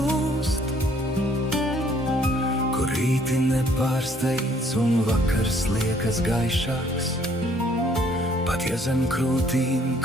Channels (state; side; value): normal; both; correlation 0.62